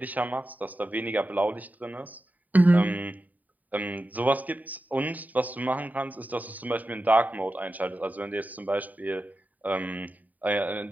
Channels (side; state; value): left; late; 0.078 ms